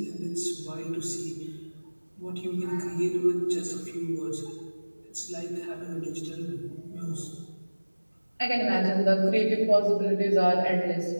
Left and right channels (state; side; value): inverted; both; correlation -1.00